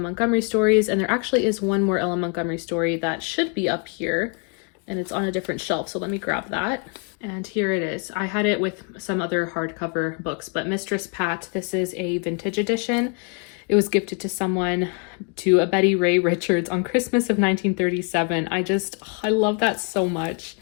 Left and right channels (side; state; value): right; quieter; 36.4 dB